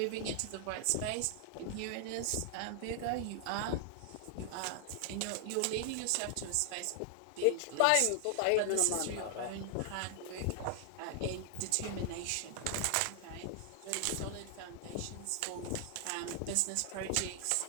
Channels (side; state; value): both; different; correlation 0.00